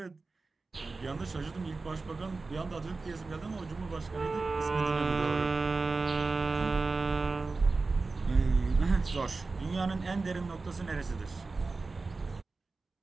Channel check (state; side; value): quieter; left; 3.9 dB